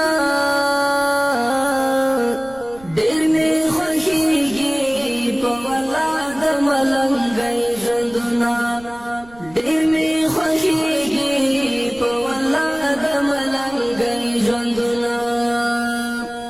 ډېر می خوښیږي په ولا د ملنګي ژوندونه ډېر می خوښیږي په ولا د ملنګي ژوندونه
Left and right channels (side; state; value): right; noise; rumble, 22 dB below the sound